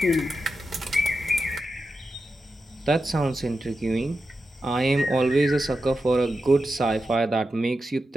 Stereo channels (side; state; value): both; normal; correlation 0.90